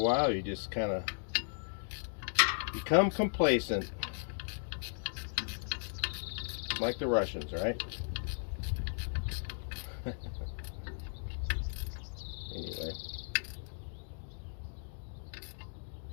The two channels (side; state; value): right; silent; digital silence